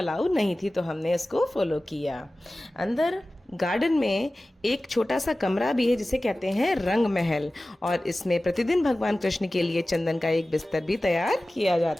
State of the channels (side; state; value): both; normal; correlation 0.96